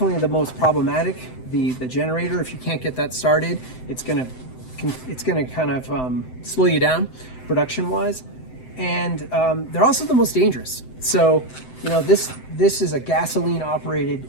the most problematic. The generator, if you can't get that started, it's gonna kind of slow you down production wise, and they're also the most dangerous. So this is a gasoline operated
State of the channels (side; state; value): right; late; 7.8 ms